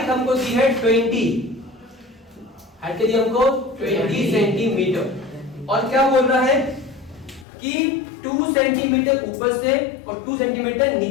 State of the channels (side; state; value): right; drops out; at 7.5 s